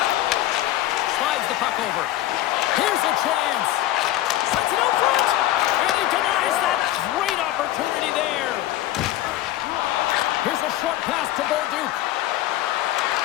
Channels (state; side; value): quieter; right; 14.5 dB